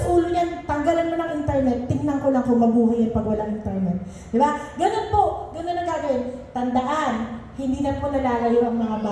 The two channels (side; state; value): both; identical; correlation 1.00